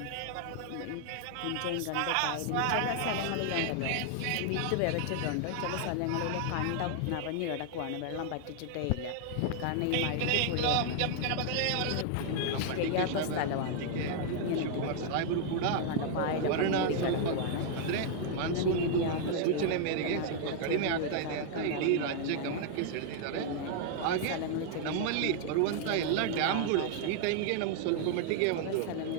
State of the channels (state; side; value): different; both; correlation 0.00